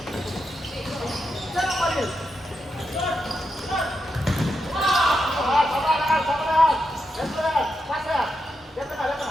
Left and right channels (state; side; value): normal; both; correlation 0.85